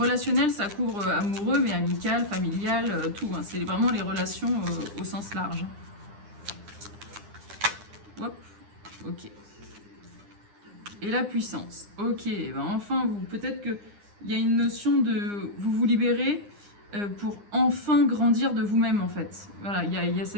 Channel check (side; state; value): left; late; 9.8 ms